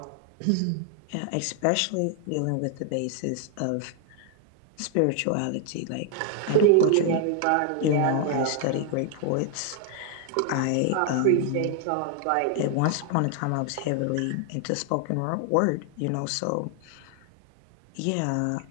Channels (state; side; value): different; both; correlation 0.00